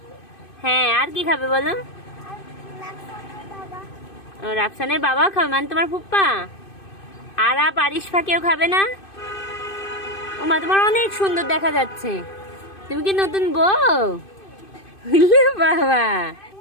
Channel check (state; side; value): late; right; 2.5 ms